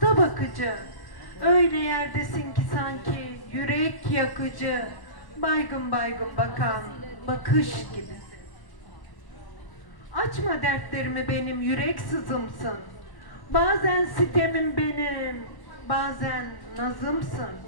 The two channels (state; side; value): late; right; 1.0 ms